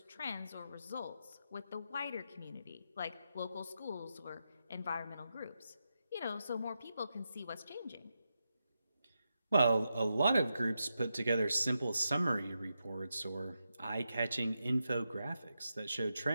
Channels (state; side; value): inverted; both; correlation -0.87